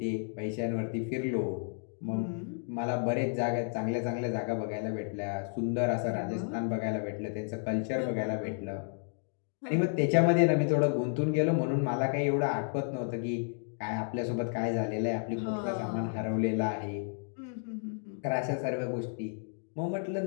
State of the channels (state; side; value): silent; right; 56 dB below the other